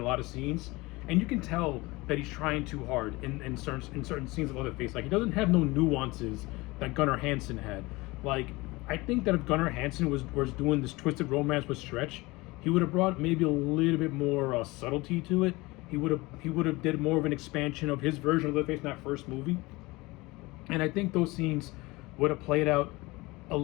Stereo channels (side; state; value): right; quieter; 22.2 dB